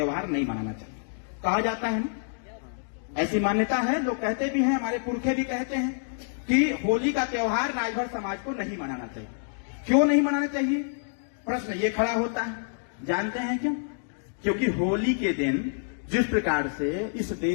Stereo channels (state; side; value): silent; right; digital silence